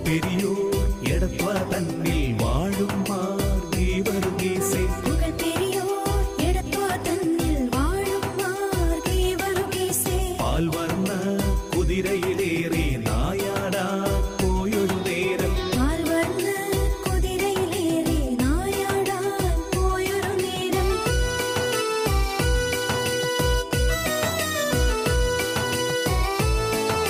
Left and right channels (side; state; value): both; identical; correlation 1.00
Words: பெரியோர் எடத்வா தன்னில் வாழும் மார்கீவருகேசே புகழ் பெரியோர் எடத்வா தன்னில் வாழும் மார்கீவருகேசே பால்வர்ண குதிரையிலேறி நாயாடா போயொரு நேரம் பால்வர்ண குதிரையிலேறி நாயாடா போயொரு நேரம்